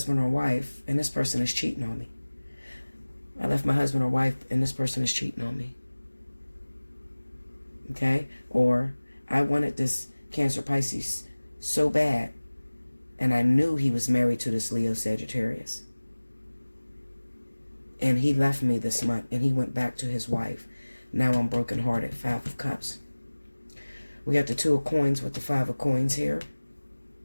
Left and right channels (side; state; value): both; inverted; correlation -1.00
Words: or wife and this person is cheating on me. I left my husband or wife and this person is cheating on me. Okay? Or I wanted this Cancer, Pisces so bad, and I knew he was married to this Leo, Sagittarius. And he left me this month and he went back to his wife. Now I'm brokenhearted. Five of Cups. We got the Two of Coins with the Five of Coins here.